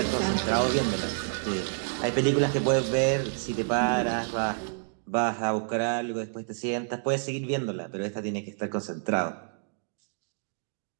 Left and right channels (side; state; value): left; silent; digital silence